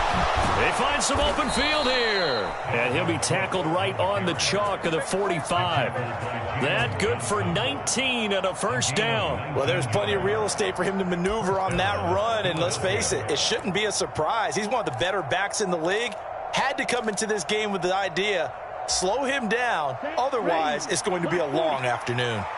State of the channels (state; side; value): identical; both; correlation 1.00